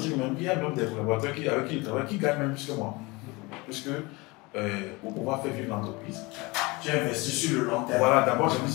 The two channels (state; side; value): quieter; right; 24.6 dB